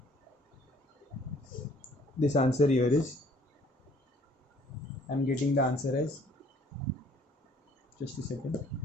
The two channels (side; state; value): both; normal; correlation 0.58